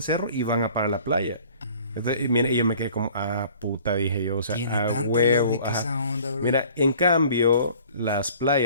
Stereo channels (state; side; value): inverted; both; correlation -0.51